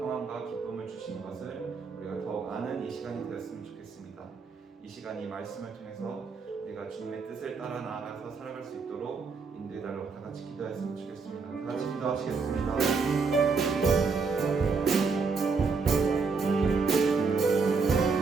기쁨을 주시는 것을 우리가 더욱 아는 이 시간이 되었으면 좋겠습니다. 이 시간이 말씀을 통해서 우리가 주님의 뜻을 따라 나아가서 살아갈 수 있도록 인도해달라고 다 같이 기도했으면 좋겠습니다. 다 같이 기도하시겠습니다.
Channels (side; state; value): left; quieter; 4.8 dB